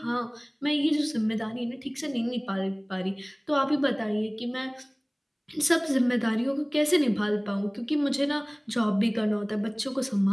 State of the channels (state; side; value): identical; both; correlation 1.00